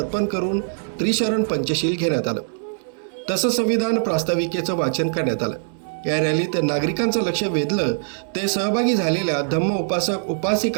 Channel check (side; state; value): left; silent; digital silence